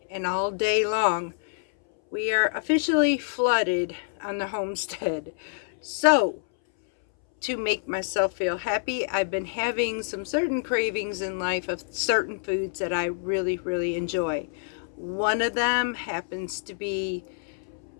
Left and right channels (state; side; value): silent; right; 60 dB below the other